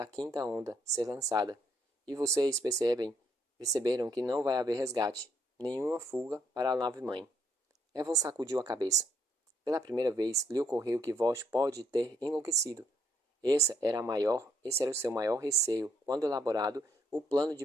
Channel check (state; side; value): normal; both; correlation 0.70